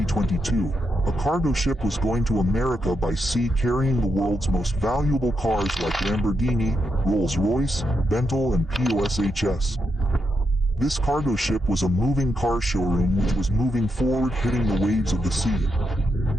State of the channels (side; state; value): both; normal; correlation 0.83